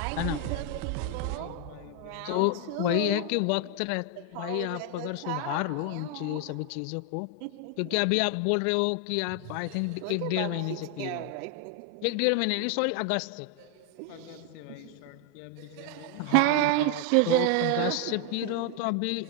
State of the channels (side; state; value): both; different; correlation 0.01